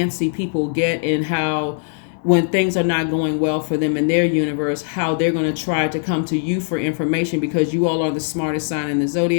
people get, and how when things are not going well for them in their universe, how they're going to try to come to you for information, because you all are the smartest sign in the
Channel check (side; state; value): right; silent; digital silence